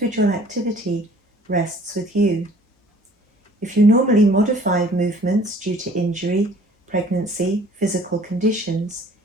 activity rests with you. If you normally modify movements due to injury, pregnancy, physical conditions,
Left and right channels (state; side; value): normal; both; correlation 0.54